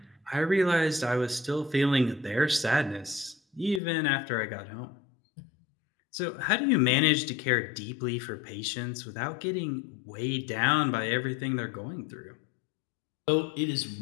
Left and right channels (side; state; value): right; drops out; at 3.8 s